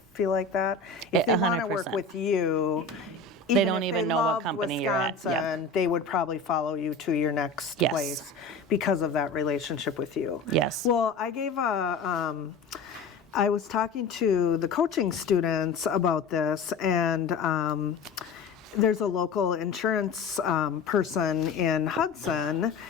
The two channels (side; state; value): right; quieter; 4.2 dB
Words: like that. If they want to work with you, they don't even know what company you're at. Wisconsin, they would probably follow you to your next place because of that relationship with you. Yes. Well, I was talking to the coaching students about this, and there's a local insurance person in Hudson